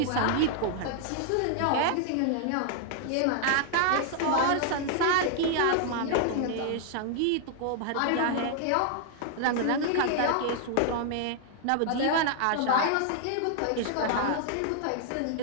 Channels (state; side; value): different; both; correlation 0.00